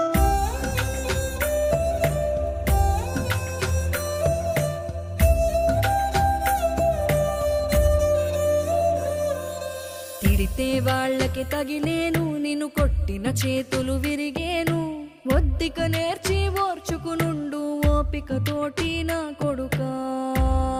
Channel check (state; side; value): identical; both; correlation 1.00